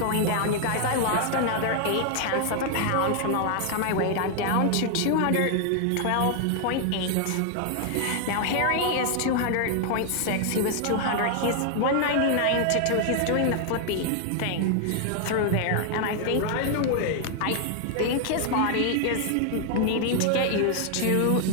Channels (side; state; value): both; different; correlation 0.00